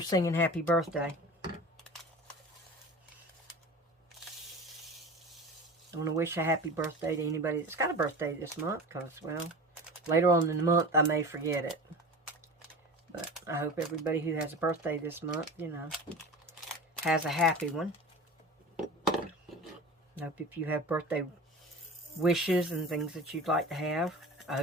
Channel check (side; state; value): both; normal; correlation 0.35